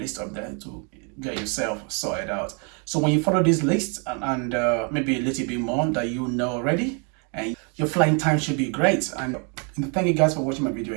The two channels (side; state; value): left; quieter; 36.8 dB